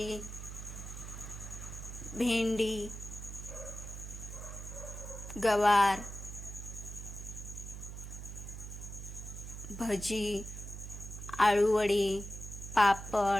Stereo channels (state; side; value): noise; right; hum, 9 dB below the sound